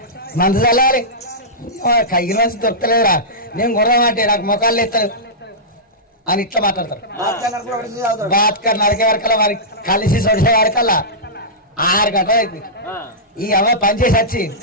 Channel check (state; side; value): normal; both; correlation -0.16